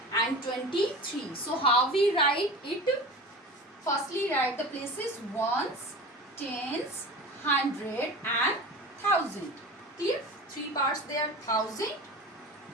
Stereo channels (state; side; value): normal; both; correlation 0.34